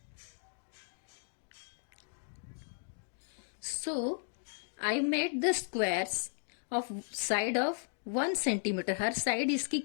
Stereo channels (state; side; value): silent; right; digital silence